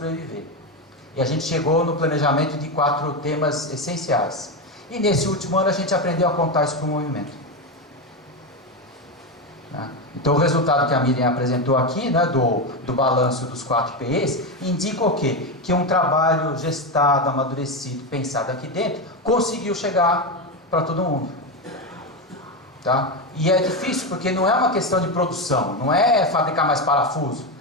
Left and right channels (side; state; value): both; normal; correlation 0.13